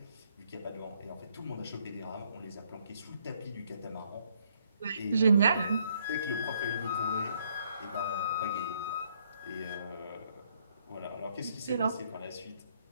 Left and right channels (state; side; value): inverted; both; correlation -0.69